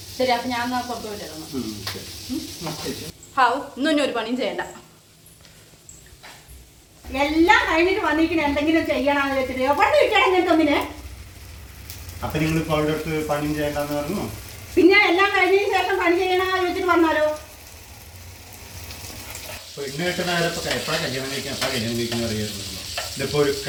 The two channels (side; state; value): both; identical; correlation 1.00